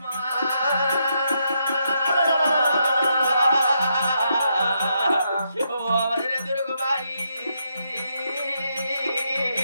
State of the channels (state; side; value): inverted; both; correlation -0.79